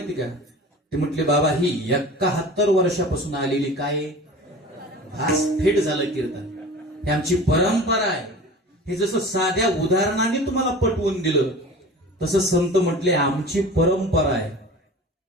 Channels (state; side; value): normal; both; correlation 0.38